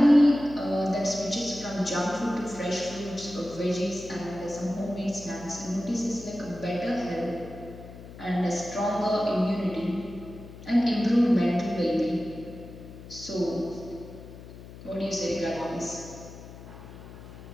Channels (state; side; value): noise; left; hum, 15 dB below the sound